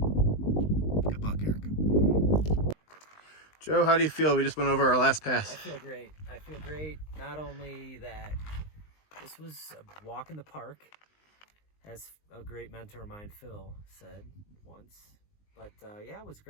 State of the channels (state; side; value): late; right; 19 ms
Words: luck, Eric. Joe, how do you feel? We just went over our last pass. I feel great. I feel great. Not only that this was a walk in the park, as a great mentor of mine, Phil, said once. But yeah, it was